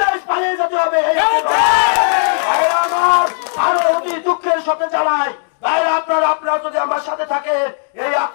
পালিয়ে যেতে হবে। আরো অতি দুঃখের সাথে জানাই আপনারা যদি আমার সাথে থাকে এই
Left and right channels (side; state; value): right; silent; digital silence